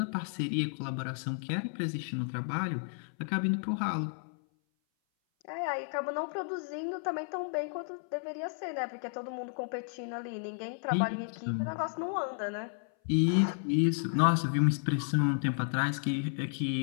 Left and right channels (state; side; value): silent; right; 56 dB below the other